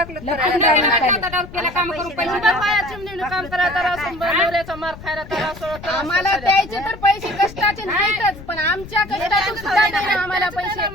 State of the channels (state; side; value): noise; left; rumble, 15 dB below the sound